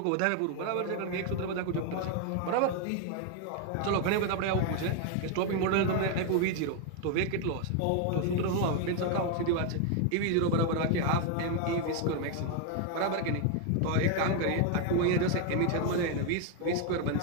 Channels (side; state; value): both; different; correlation 0.01